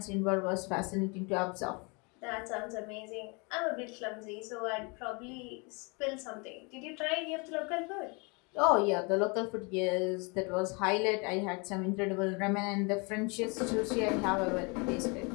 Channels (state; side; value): quieter; right; 30.8 dB